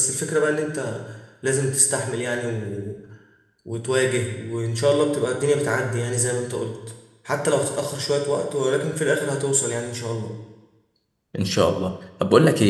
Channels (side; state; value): both; identical; correlation 1.00